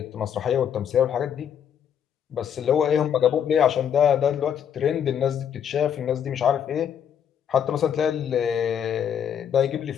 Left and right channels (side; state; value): right; quieter; 8.6 dB